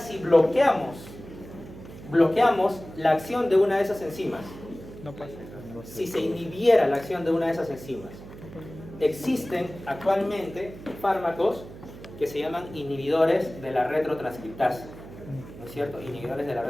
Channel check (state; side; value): noise; right; hum, 16 dB below the sound